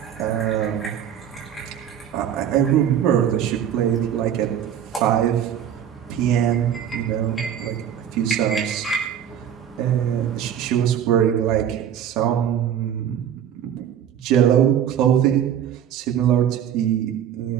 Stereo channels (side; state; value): left; quieter; 9.6 dB